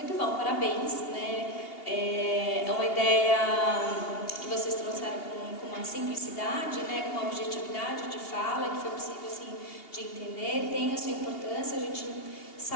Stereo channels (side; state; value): right; late; 2.8 ms